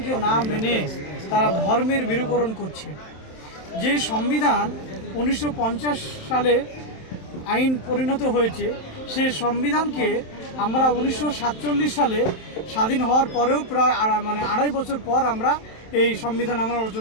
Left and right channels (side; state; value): right; late; 27 ms